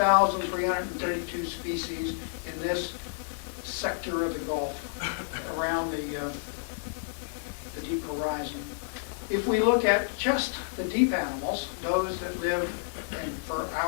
species in this sector of the Gulf around the Deep Horizon. If we look at just the deep animals, those that live in, for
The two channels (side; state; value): right; silent; 58 dB below the other